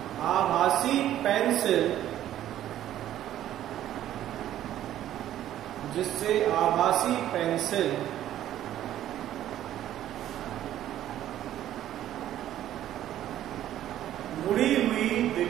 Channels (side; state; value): left; quieter; 12.3 dB